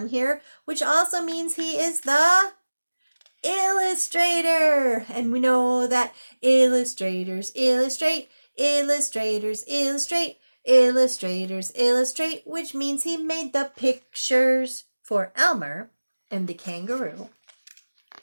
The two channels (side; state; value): both; inverted; correlation -1.00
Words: here, which also means he is the illustrator. And we know that illustrators illustrate, illustrators illustrate, illustrators illustrate, which means he made the pictures for Elmer and the kangaroo.